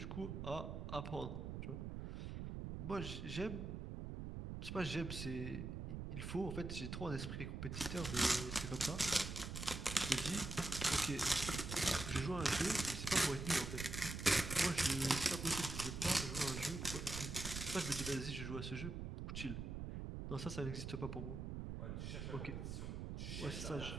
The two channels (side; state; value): right; noise; rumble, 5 dB below the sound